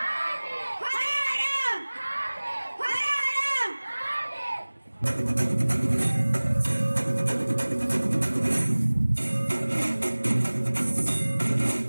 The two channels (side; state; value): both; inverted; correlation -1.00